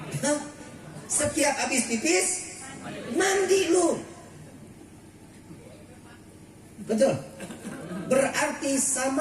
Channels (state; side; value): identical; both; correlation 1.00